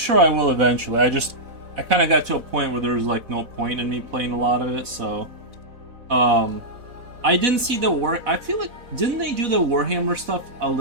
I will eventually. I kind of got to a point where there was like no point in me playing a lot of it, so I didn't see the I feel like didn't they do the Warhammer stuff a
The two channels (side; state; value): left; late; 4.1 ms